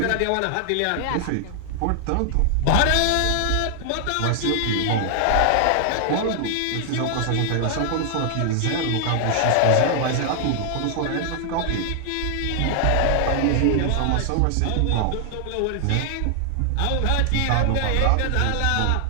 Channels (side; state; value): both; different; correlation 0.00